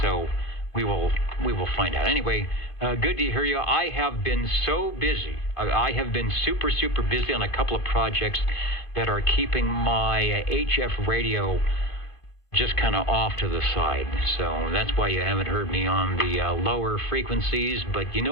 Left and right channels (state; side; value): late; right; 1.5 ms